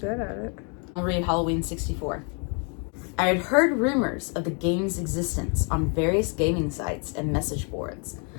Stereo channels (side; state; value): right; quieter; 38.1 dB